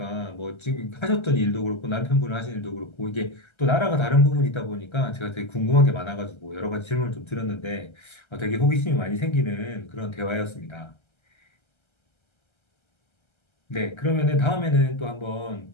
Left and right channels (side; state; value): right; late; 1.3 ms